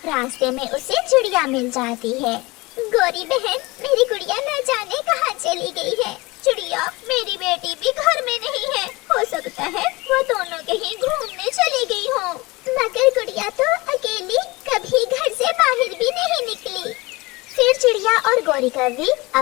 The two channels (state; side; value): quieter; right; 23.1 dB